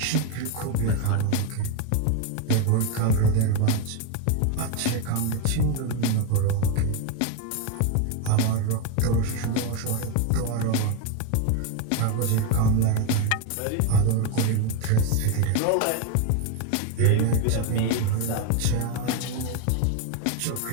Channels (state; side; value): different; both; correlation 0.02